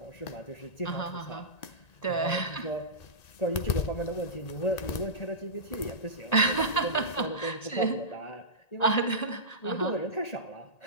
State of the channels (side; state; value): right; late; 1.9 ms